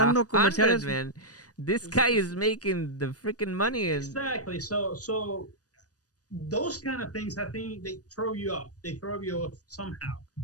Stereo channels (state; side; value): late; right; 0.68 ms